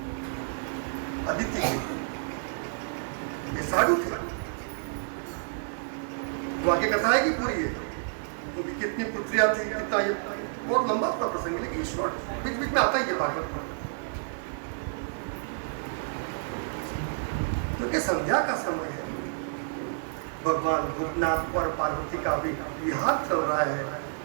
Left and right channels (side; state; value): left; silent; digital silence